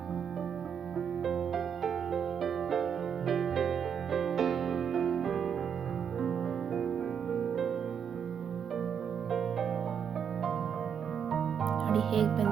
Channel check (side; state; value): left; quieter; 7.6 dB